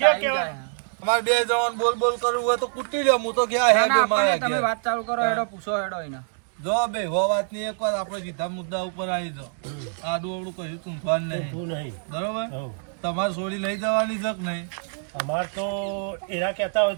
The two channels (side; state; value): left; silent; digital silence